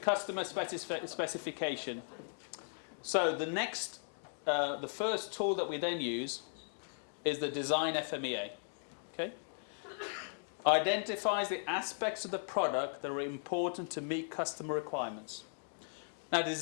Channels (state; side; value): silent; right; digital silence